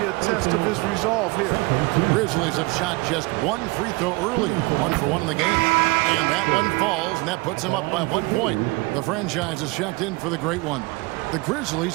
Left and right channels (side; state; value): left; quieter; 24.8 dB